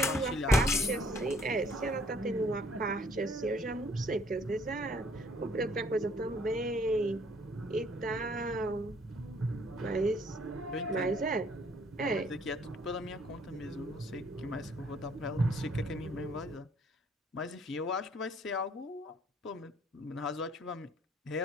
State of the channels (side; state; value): both; normal; correlation 0.62